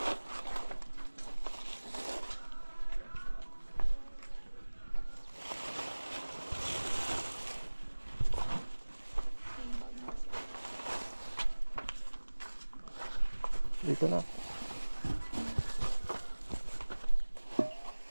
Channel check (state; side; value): inverted; both; correlation -1.00